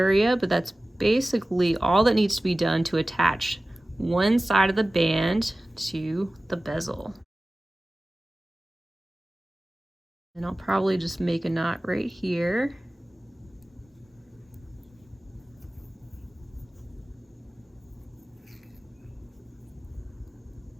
But that's basically all that needs to be done to attach one side of the band to the bezel. And I'll probably just make a knot right here.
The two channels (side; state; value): both; normal; correlation 0.97